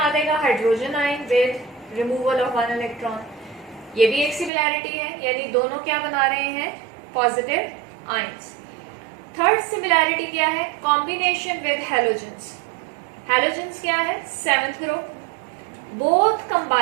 देगा, hydrogen ion with removal of 1 electron. ये भी एक सिमिलैरिटी है, यानी दोनों क्या बना रहे हैं? Positive ions. थर्ड सिमिलैरिटी क्या है? Combination with halogens. हैलोजेंस क्या है? Seventh group. Both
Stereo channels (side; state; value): left; drops out; at 4.5 s